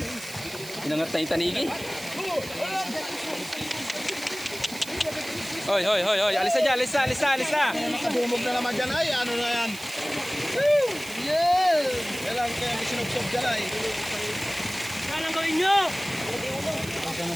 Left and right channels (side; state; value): right; noise; hiss, 14 dB below the sound